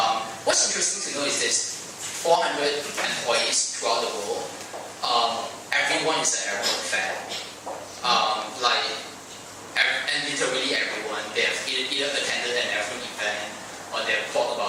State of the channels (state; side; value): identical; both; correlation 1.00